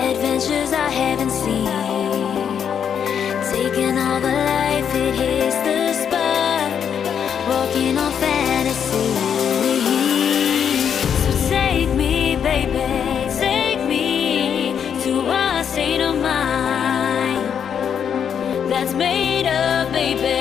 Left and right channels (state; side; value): quieter; right; 8.0 dB